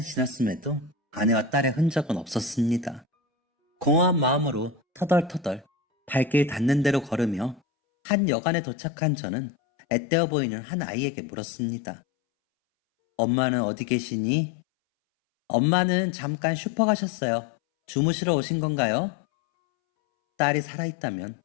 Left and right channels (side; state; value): right; drops out; at 7.6 s